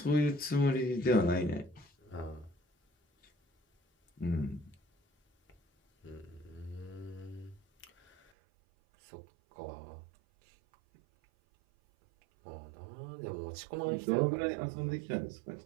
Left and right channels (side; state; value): left; drops out; at 8.3 s